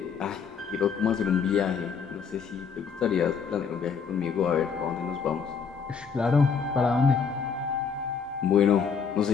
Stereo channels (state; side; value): quieter; right; 6.2 dB